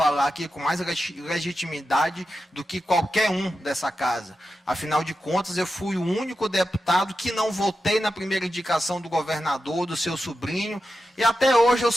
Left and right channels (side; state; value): both; normal; correlation 0.90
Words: aqui com mais legitimidade do que qualquer um dessa casa. Afinal de contas, eu fui o único deputado que não votei na primeira indicação do governador, do seu sobrinho, e até hoje eu